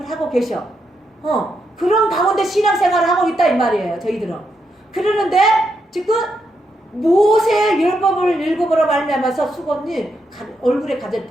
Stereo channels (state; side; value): normal; both; correlation 0.81